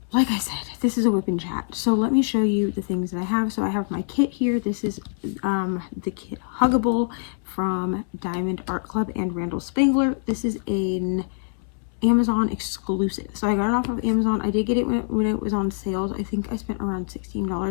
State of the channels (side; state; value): right; silent; 62 dB below the other